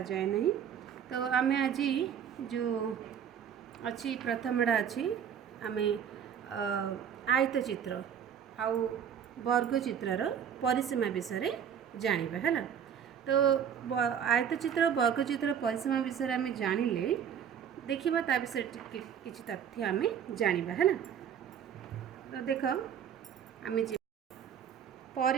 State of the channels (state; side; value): quieter; left; 8.4 dB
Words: जाए नहीं। तो आम आज जो अच्छी प्रथमटा अच्छी आम आयत चित्र आउ वर्ग चित्रर परिसीमा विषय जानिबा है। तो आयत चित्र वर्ग चित्र परिसीमा विषय आम जानिले देखिबा ता विषय किछि तथ्य आम जानिबा है। तो देख आम